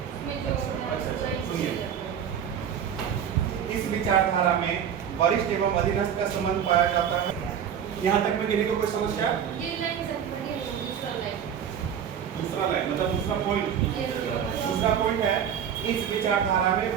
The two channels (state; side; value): quieter; left; 8.6 dB